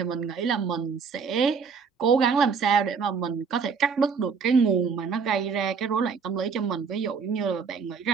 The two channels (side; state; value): left; quieter; 5.6 dB